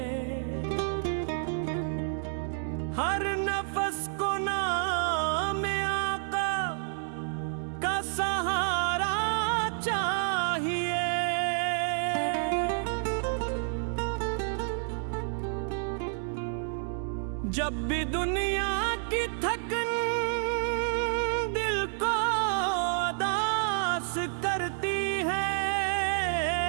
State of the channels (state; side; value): silent; left; digital silence